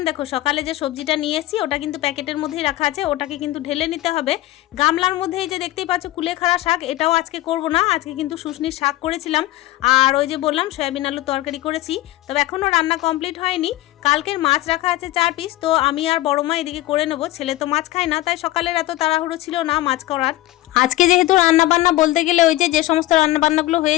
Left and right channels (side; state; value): right; quieter; 16.9 dB